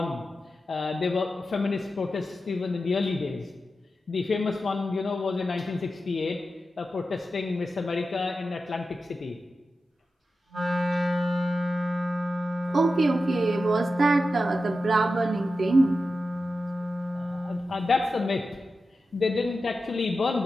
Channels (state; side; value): normal; both; correlation 0.91